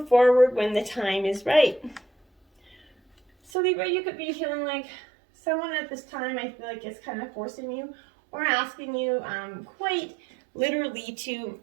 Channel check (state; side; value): drops out; left; at 3.5 s